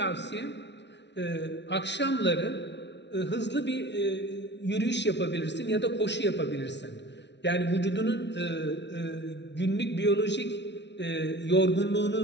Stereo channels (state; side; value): late; right; 0.51 ms